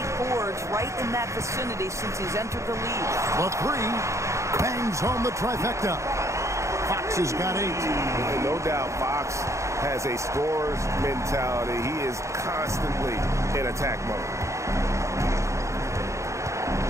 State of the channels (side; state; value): left; late; 0.14 ms